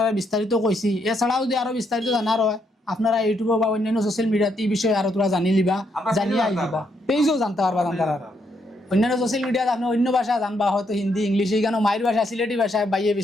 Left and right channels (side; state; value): both; normal; correlation 0.76